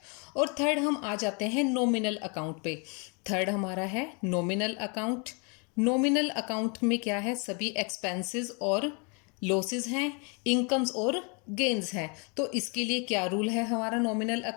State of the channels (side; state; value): right; quieter; 33.9 dB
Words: और थर्ड हम आ जाते हैं नॉमिनल अकाउंट पे। थर्ड हमारा है नॉमिनल अकाउंट। नॉमिनल अकाउंट में क्या है, सभी एक्सपेंसेस और लॉसेस हैं, इनकम्स और गेन्स हैं। तो इसके लिए क्या रूल है हमारा नॉमिनल